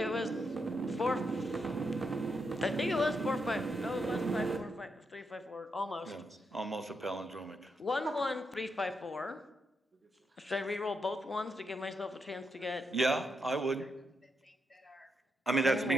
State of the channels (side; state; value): both; normal; correlation 0.82